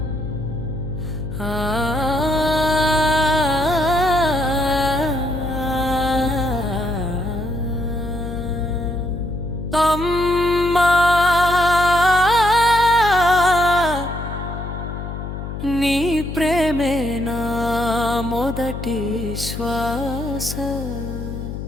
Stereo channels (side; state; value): left; noise; hum, 7 dB below the sound